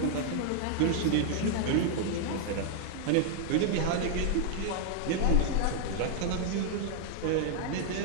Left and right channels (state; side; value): different; both; correlation -0.01